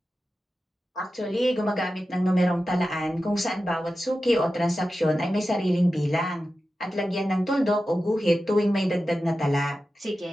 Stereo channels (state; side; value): normal; both; correlation 0.93